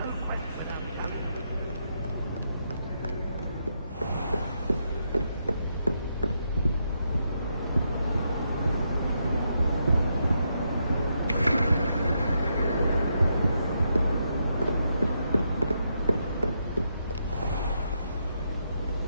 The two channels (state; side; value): inverted; both; correlation -0.80